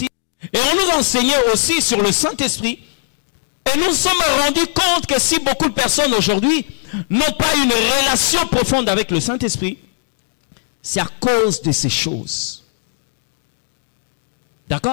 et on nous enseignait aussi sur le Saint-Esprit. Et nous nous sommes rendus compte que si beaucoup de personnes aujourd'hui n'ont pas une relation profonde avec le Saint-Esprit, c'est à cause de ces choses.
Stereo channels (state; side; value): silent; right; digital silence